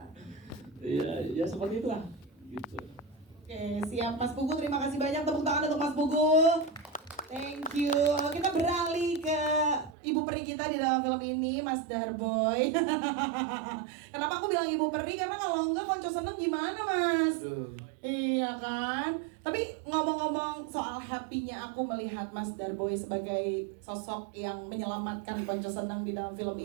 Ya seperti itulah gitu. Oke, siap Mas Pugu, terima kasih banyak, tepuk tangan untuk Mas Pugu. Thank you. Kita beralih ke ibu peri kita di dalam film ini, Mas Darboy. Kenapa aku bilang ibu peri? Karena kalau enggak Konco Seneng gimana, Mas? Iya kan? Tapi ngomong-ngomong soal happy-nya aku melihat Mas Darboy sebagai sosok yang menyelamatkan Konco Seneng di dalam film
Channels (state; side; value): drops out; left; at 10.0 s